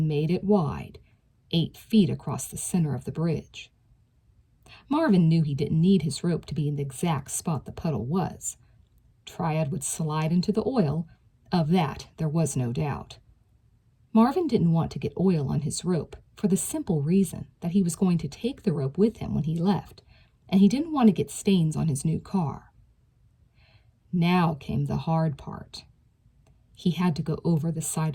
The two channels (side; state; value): both; identical; correlation 1.00